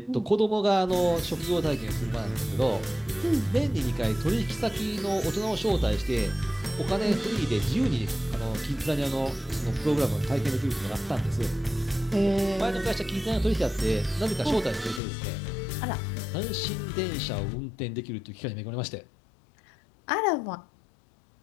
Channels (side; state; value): right; drops out; at 15.0 s